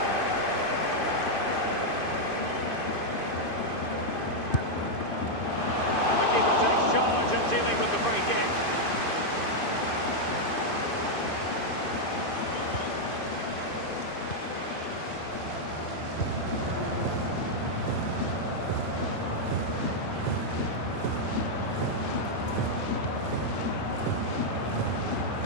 And the keeper takes charge of dealing with the free kick.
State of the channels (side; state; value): right; late; 2.5 ms